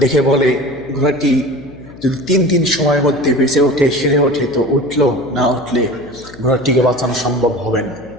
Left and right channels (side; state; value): left; noise; hum, 19 dB below the sound